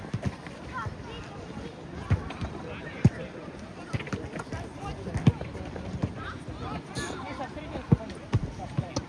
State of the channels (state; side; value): identical; both; correlation 1.00